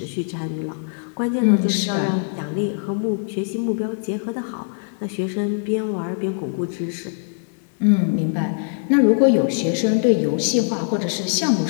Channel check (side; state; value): right; silent; 64 dB below the other